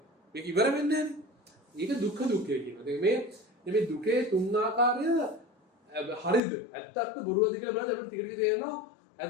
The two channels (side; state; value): right; drops out; at 6.4 s